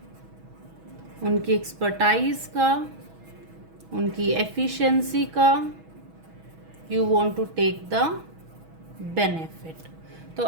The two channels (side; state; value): left; late; 6.2 ms